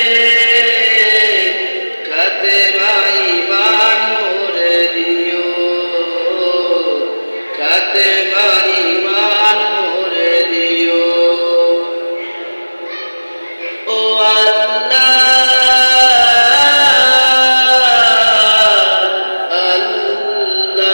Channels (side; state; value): both; inverted; correlation -1.00